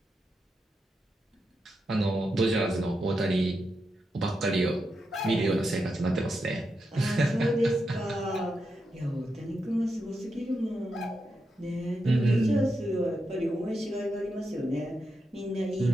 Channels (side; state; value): both; normal; correlation 0.86